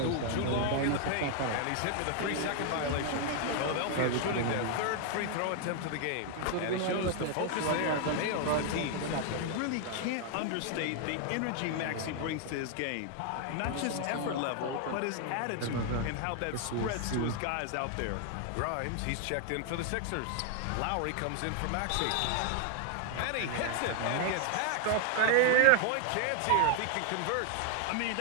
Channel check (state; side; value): different; both; correlation 0.00